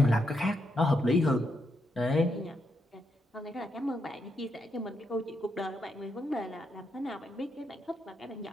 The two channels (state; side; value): normal; both; correlation 0.81